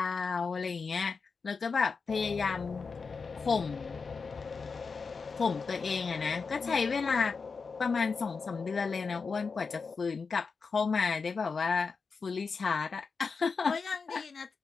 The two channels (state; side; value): quieter; right; 4.9 dB